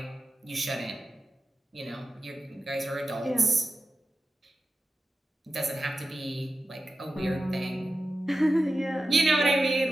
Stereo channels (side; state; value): both; normal; correlation 0.92